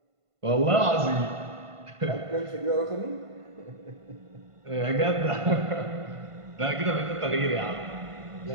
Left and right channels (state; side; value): late; left; 1.5 ms